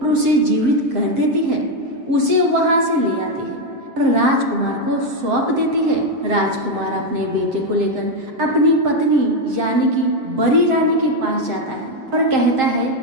उसे जीवित कर देती है। उसे वहां से ले आती है। और राजकुमार को सौंप देती है। राजकुमार अपने बेटे को लेकर अपनी पत्नी यानी कि बड़ी रानी के पास जाता है और कहता है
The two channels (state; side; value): late; left; 7.6 ms